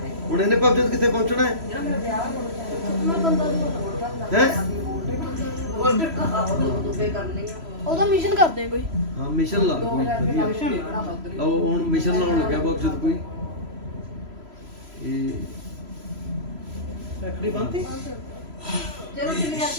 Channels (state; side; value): late; left; 3.0 ms